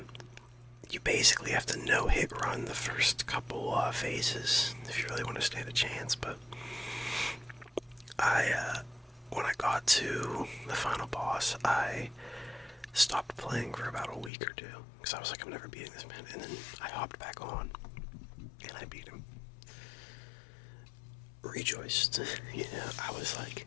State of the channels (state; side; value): drops out; right; at 14.3 s